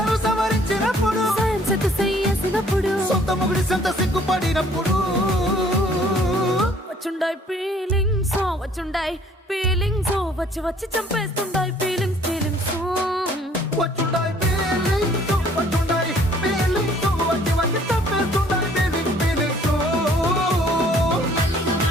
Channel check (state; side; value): normal; both; correlation 0.58